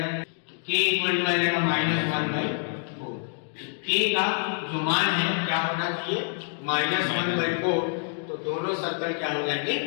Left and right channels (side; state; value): right; silent; 58 dB below the other